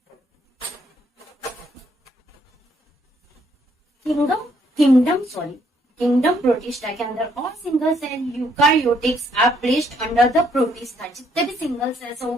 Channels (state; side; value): normal; both; correlation 0.69